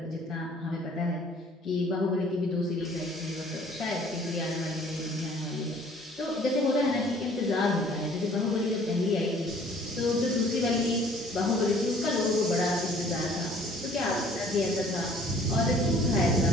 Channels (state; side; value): normal; both; correlation 0.55